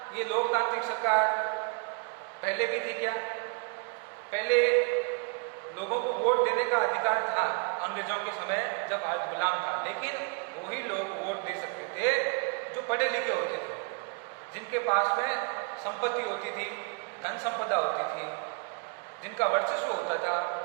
ये लोकतांत्रिक सरकार पहले भी थी क्या? पहले लोगों को वोट देने का अधिकार था अंग्रेजों के समय जब आज गुलाम था, लेकिन वही लोग वोट दे सकते थे जो पढ़े लिखे होते थे, जिनके पास में संपत्ति होती थी, धन संपदा होती थी, जिनका वर्चस्व होता था,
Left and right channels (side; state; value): left; quieter; 35.3 dB